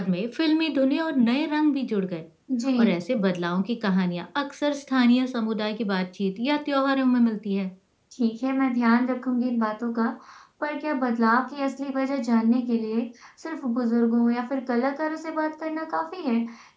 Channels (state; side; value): identical; both; correlation 1.00